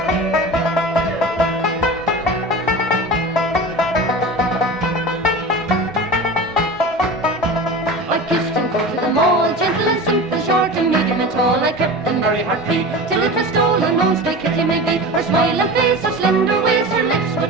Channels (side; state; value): both; normal; correlation 0.31